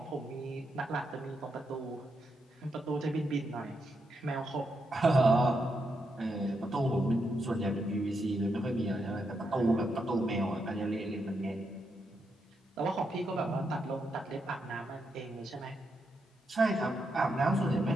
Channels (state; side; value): normal; both; correlation 0.82